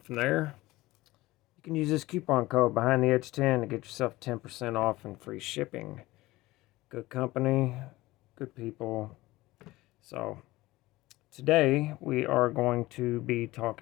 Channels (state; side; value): quieter; right; 18.8 dB